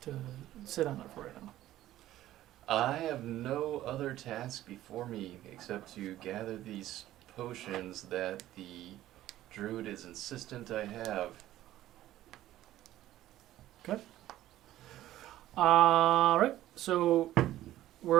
to sit on it for right now? I have no other task before me except to gather these potions that the druid is insistent I have. Okay. All right. So,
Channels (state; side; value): quieter; left; 14.1 dB